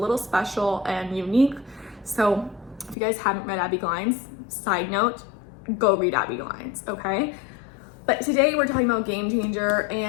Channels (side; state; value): right; drops out; at 3.0 s